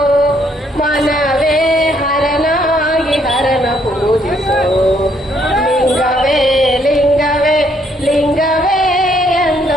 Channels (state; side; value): normal; both; correlation 0.69